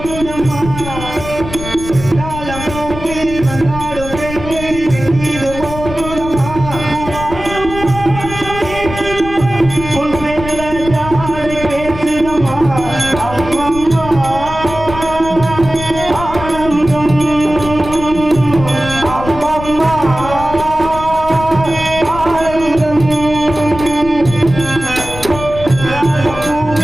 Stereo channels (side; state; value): left; noise; rumble, 10 dB below the sound